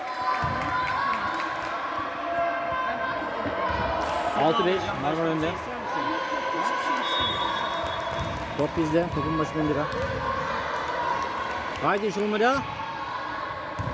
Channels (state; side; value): identical; both; correlation 1.00